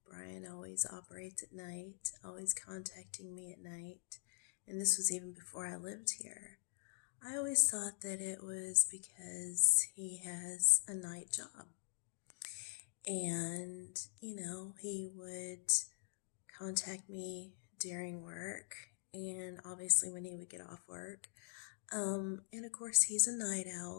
Brian always operates at night, always contacting me at night, and this was even before I lived here, I always thought that it was because he has a night job. And, he would contact me during work and obviously when he would get off work. And of course, he's a night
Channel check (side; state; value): right; silent; digital silence